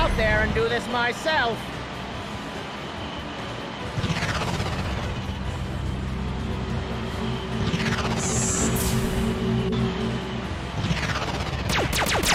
there and do this myself.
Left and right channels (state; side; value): identical; both; correlation 1.00